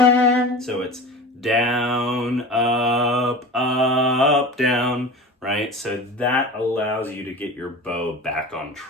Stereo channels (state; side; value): normal; both; correlation 0.34